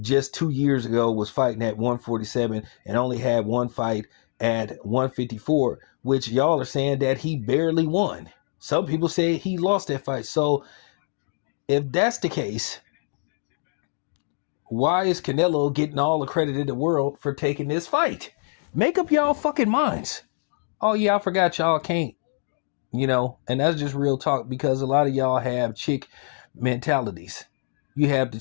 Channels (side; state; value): right; silent; digital silence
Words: 2 years ago was fighting at 147 and only had one fight at 154, which y'all are saying that he barely won. Some people say he lost that fight. So if that's the case, why is Canelo getting all the credit in the world for taking this fight? Make up y'all fucking minds. Oh yeah, I forgot y'all can't and that's just real talk because a lot of y'all have chick mentalities. You have the